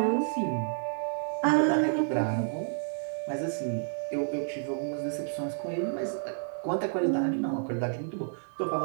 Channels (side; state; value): left; silent; digital silence